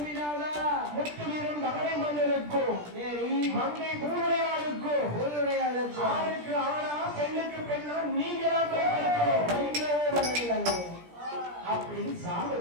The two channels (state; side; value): late; left; 17 ms